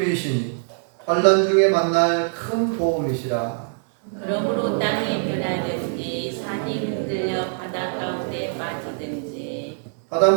환난 중에 만날 큰 도움이시라. 그러므로 땅이 변하든지 산이 흔들려 바다 가운데 빠지든지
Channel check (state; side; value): silent; left; digital silence